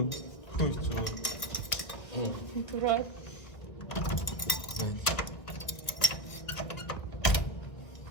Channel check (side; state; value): right; late; 1.3 ms